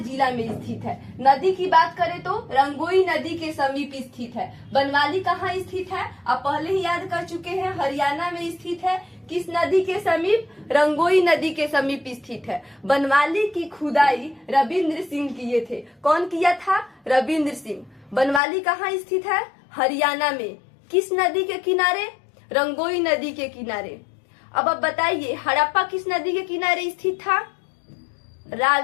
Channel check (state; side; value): drops out; right; at 18.4 s